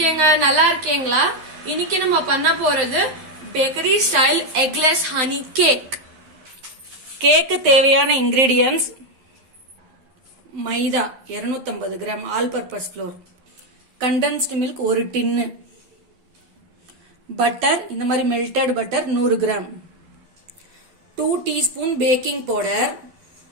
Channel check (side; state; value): left; late; 12 ms